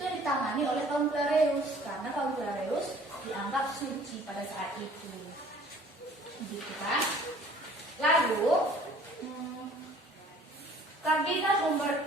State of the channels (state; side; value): normal; both; correlation 0.53